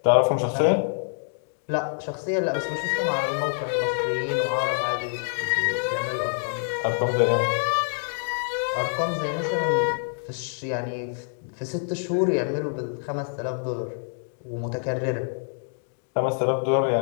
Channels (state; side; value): silent; right; digital silence